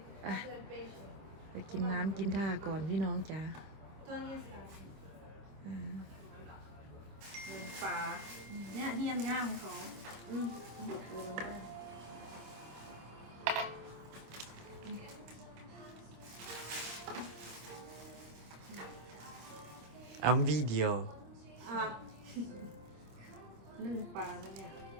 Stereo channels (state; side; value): late; left; 26 ms